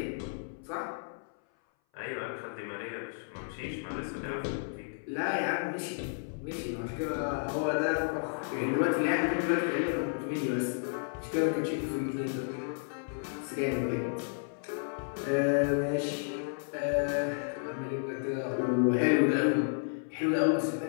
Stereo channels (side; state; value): right; silent; 56 dB below the other